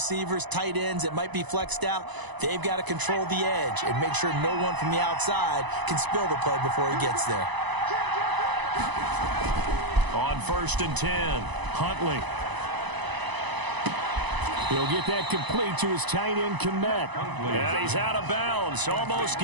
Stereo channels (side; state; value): left; late; 1.0 ms